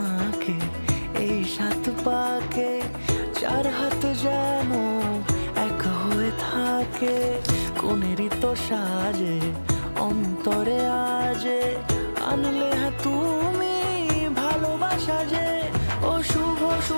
এই 7 পাকে, 4 হাত যেন এক হয়ে থাকে। কোনেরই তো সাজে অন্তরে আজে, আনলে তুমি ভালোবাসা যে। ও শুভ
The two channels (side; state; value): both; inverted; correlation -1.00